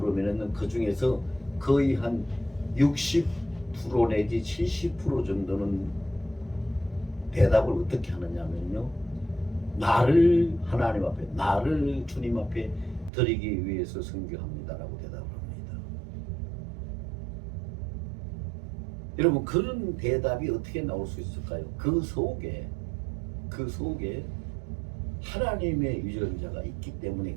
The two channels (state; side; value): drops out; left; at 13.1 s